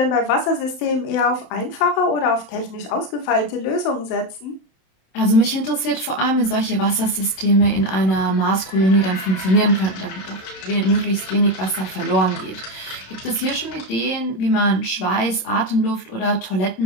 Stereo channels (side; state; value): right; late; 26 ms